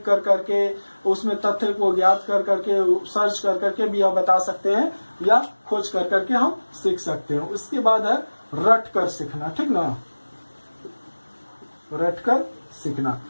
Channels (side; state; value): both; inverted; correlation -1.00